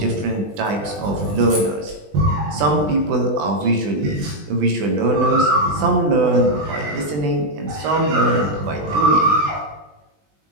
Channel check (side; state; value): left; late; 20 ms